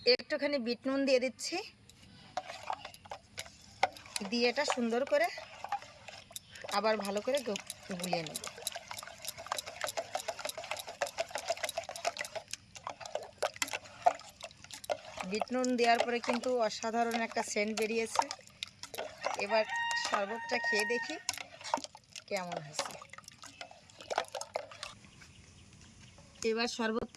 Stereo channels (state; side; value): identical; both; correlation 1.00